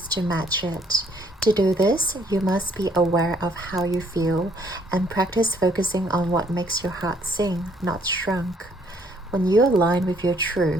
to match it. To do this, you must be aware of how you feel and practice focusing on what makes your heart sing, not shrunk. When you align with your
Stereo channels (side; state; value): both; normal; correlation 0.65